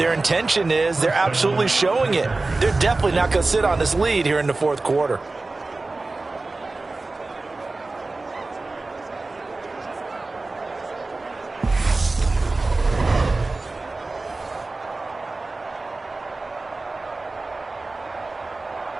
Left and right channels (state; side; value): quieter; left; 3.4 dB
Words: intention is. They're absolutely showing it. They're definitely not going to sit on this lead here in the 4th quarter.